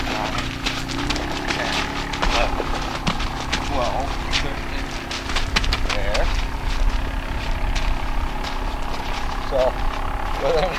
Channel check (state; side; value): identical; both; correlation 1.00